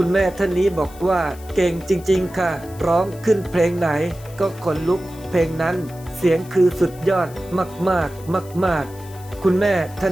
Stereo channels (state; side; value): noise; left; hiss, 22 dB below the sound